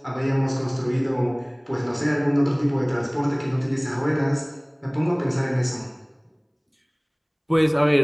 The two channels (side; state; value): both; identical; correlation 1.00